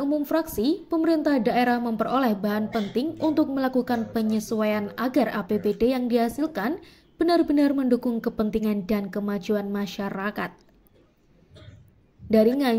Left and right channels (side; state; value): both; identical; correlation 1.00